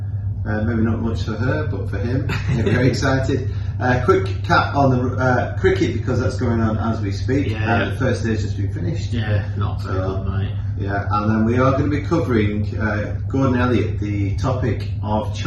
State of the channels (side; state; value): both; identical; correlation 1.00